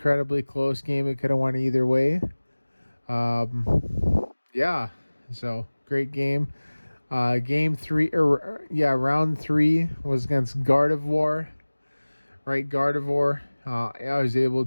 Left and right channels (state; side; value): inverted; both; correlation -1.00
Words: close game. It could have went either way. Yeah. So great game. Game 3, round 3 was against Gardevoir. Right, Gardevoir. I was able